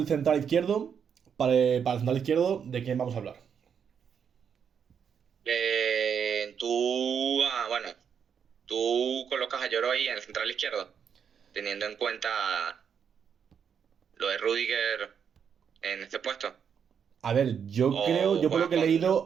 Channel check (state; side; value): quieter; left; 7.4 dB